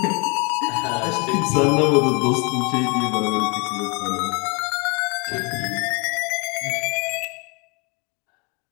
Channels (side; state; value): right; quieter; 31.5 dB